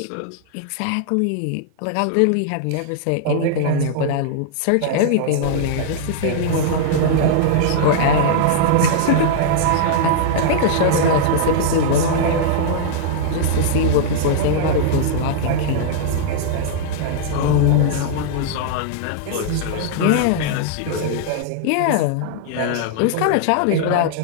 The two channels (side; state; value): both; different; correlation -0.01